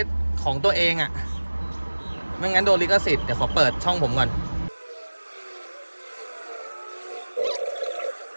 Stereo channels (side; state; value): both; inverted; correlation -1.00